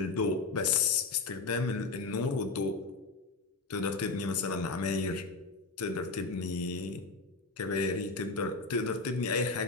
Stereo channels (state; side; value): quieter; right; 3.9 dB